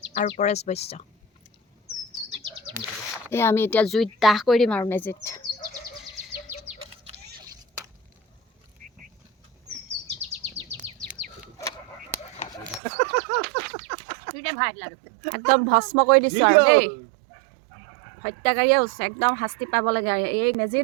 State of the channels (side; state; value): left; drops out; at 12.8 s